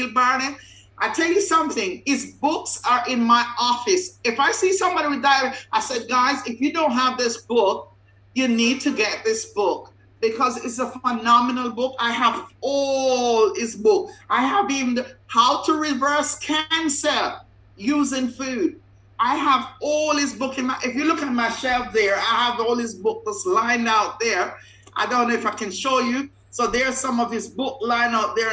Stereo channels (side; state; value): both; identical; correlation 1.00